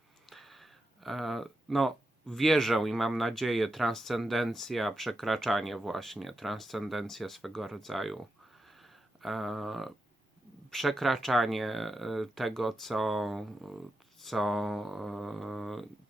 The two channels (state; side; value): normal; both; correlation 0.88